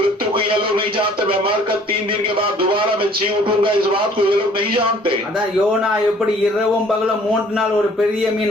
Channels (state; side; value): normal; both; correlation 0.55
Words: को ये लोग नहीं जानते, मैं मरकर 3 दिन के बाद दोबारा मैं जी उठूंगा, इस बात को ये लोग नहीं जानते. அதான் யோனா எப்படி இரவும் பகலும் 3 நாள் ஒரு பெரிய